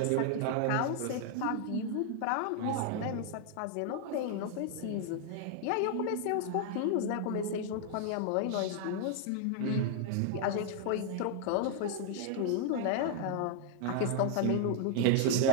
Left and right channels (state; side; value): different; both; correlation 0.00